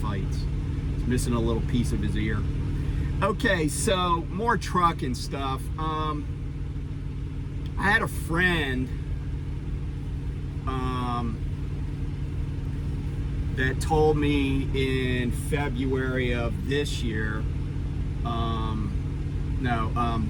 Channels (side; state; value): both; identical; correlation 1.00